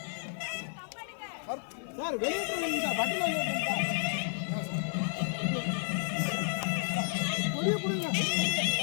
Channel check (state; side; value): silent; right; 57 dB below the other